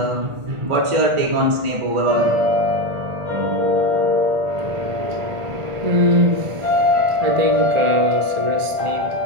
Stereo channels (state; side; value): late; left; 1.5 ms